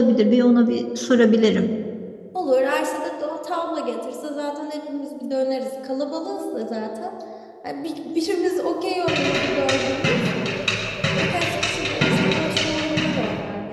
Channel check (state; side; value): identical; both; correlation 1.00